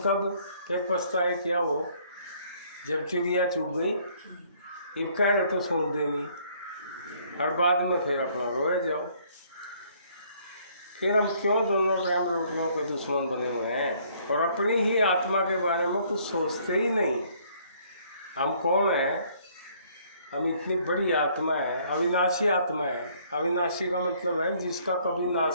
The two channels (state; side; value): inverted; both; correlation -0.62